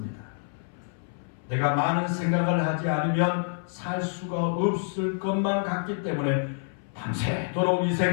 내가 많은 생각을 하지 않으면 살 수가 없을 것만 같기 때문에 밤새도록 이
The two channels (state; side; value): silent; right; 60 dB below the other